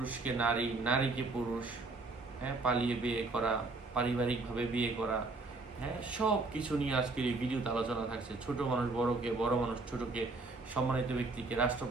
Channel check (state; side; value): quieter; left; 3.5 dB